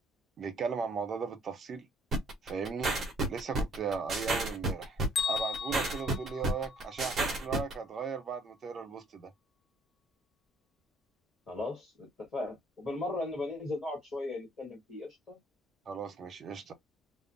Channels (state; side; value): normal; both; correlation 0.61